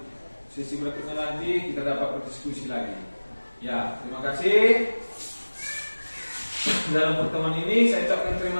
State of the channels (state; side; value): inverted; both; correlation -1.00